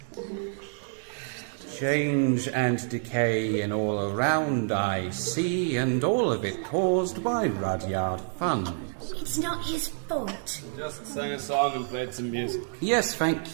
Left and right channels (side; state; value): left; silent; digital silence